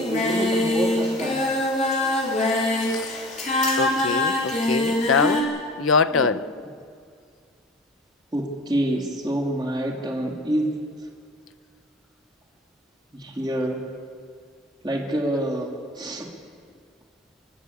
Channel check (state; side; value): normal; both; correlation 0.40